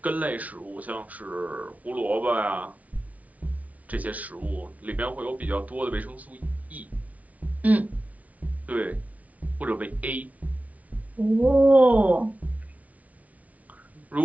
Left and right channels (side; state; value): left; late; 0.070 ms